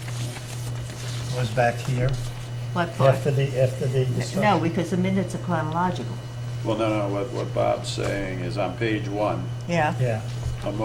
was back here What part? after the discussion? No, because the minutes are chronological. Well, no, what Bob's saying is on page 1, Yeah. Yeah, a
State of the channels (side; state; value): both; identical; correlation 1.00